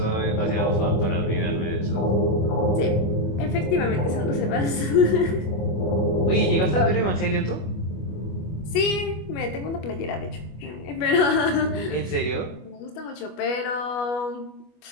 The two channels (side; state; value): right; late; 25 ms